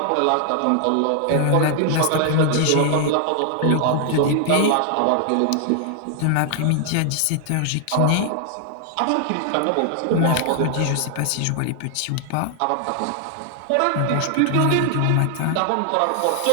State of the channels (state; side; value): different; both; correlation 0.00